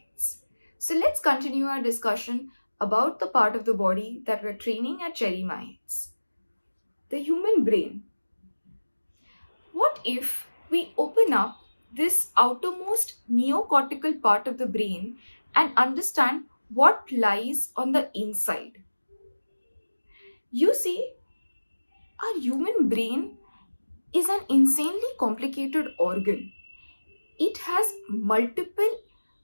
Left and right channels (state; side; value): inverted; both; correlation -1.00